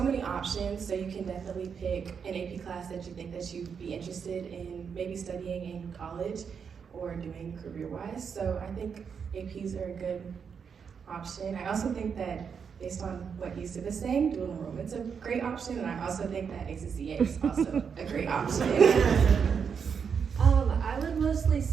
many options, so you can definitely pick an AP class that you think that you'd be interested in maybe studying in college or doing career-wise. So I think APs are a good option. I also think that based on what Yusuf is saying, dual enrollment's a great option, and I also think that ACCA is also a great option. I would mostly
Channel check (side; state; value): left; quieter; 6.6 dB